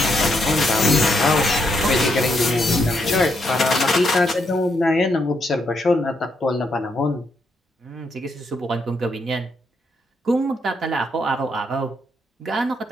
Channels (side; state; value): both; normal; correlation 0.77